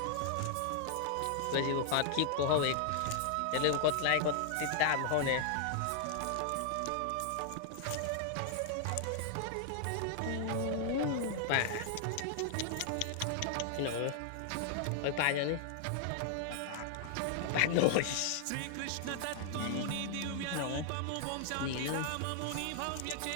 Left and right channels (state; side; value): different; both; correlation 0.00